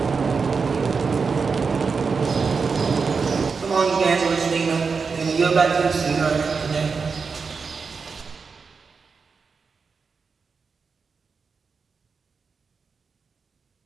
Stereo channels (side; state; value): left; quieter; 5.1 dB